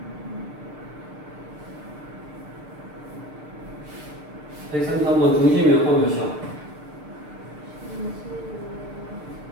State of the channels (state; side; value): late; left; 6.6 ms